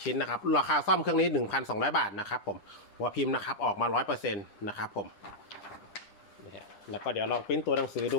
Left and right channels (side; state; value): right; late; 9.9 ms